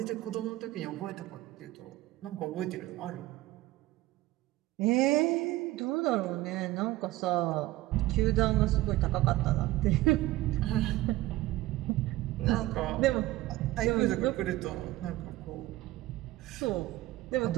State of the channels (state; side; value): quieter; left; 17.1 dB